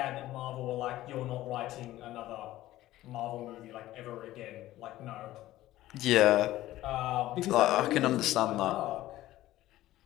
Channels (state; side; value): quieter; right; 15.3 dB